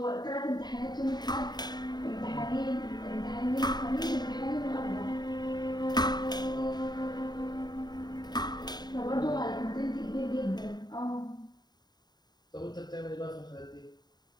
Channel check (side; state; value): right; late; 0.20 ms